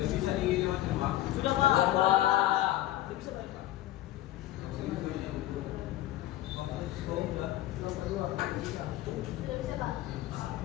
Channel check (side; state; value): right; quieter; 14.9 dB